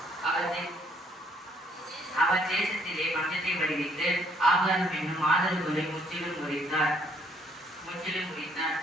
அவர் தேசத்திலே பஞ்சத்தை விளைவித்து ஆகாரம் என்னும் ஆதரவுகளை முற்றிலும் முறித்தார்.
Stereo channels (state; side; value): normal; both; correlation 0.66